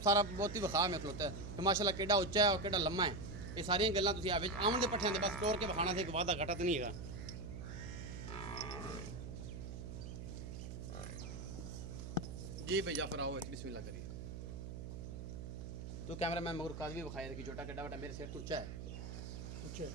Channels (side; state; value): right; noise; hum, 8 dB below the sound